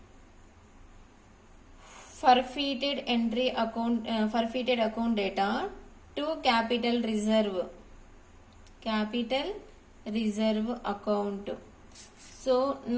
forfeited entry account, forfeited account data to capital reserve account. So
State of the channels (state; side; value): identical; both; correlation 1.00